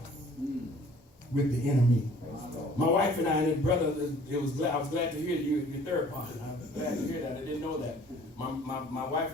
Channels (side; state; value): both; normal; correlation 0.53